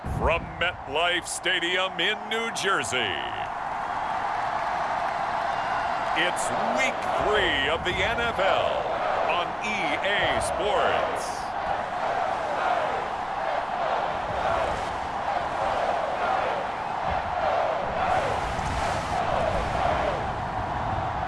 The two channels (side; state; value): both; identical; correlation 1.00